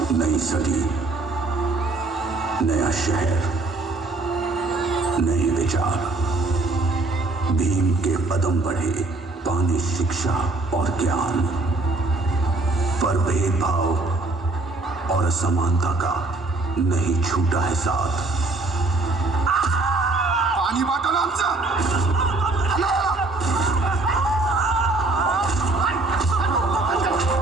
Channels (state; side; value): quieter; left; 3.2 dB